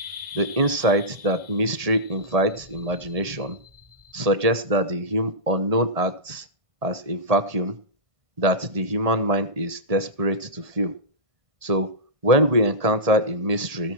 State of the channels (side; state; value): left; late; 1.5 ms